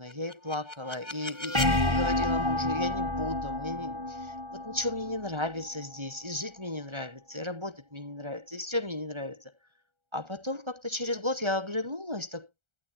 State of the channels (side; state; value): left; late; 1.3 ms